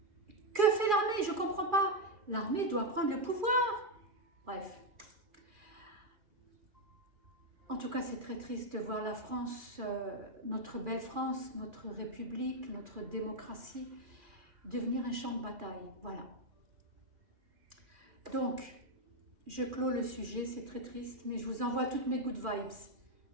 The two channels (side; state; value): left; late; 2.4 ms